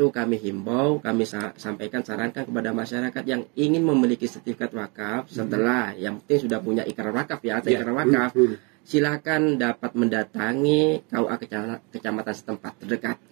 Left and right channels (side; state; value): left; quieter; 31.9 dB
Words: kami himbau, kami sarankan kepada masyarakat yang ingin memiliki sertifikat wakaf setelah yang penting sudah punya ikrar wakaf ya, atau ikrar wakaf. Silakan dapat mendatangi KUA kecamatan setempat terdekat.